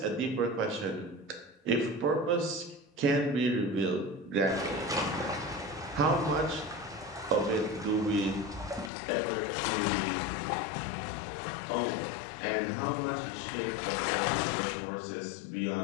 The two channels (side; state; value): right; drops out; at 8.9 s